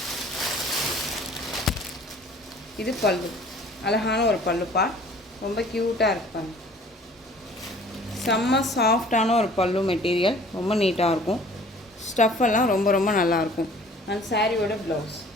இது பல்லு. அழகான ஒரு பல்லுப்பா. ரொம்ப க்யூட்டாக இருப்பாங்க. செம்ம சாஃப்டான ஒரு பல்லு மெட்டீரியல். ரொம்ப நீட்டாக இருக்கும். ஸ்டஃப்பெல்லாம் ரொம்ப நல்லாயிருக்கும். அண்ட் சாரியோட ப்ளவுஸ்.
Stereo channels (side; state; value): both; normal; correlation 0.51